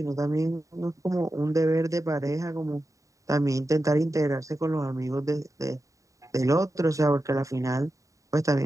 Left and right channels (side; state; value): left; late; 0.16 ms